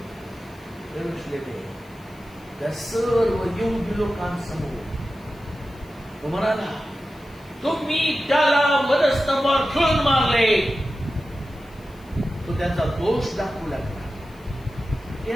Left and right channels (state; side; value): noise; left; hiss, 29 dB below the sound